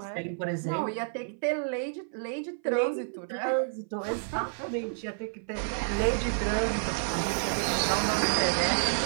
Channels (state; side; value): silent; left; 56 dB below the other